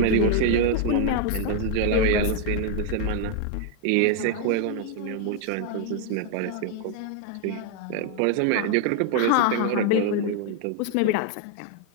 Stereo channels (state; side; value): different; both; correlation 0.00